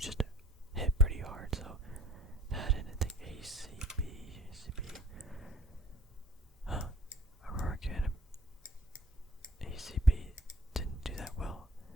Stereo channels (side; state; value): both; normal; correlation 0.52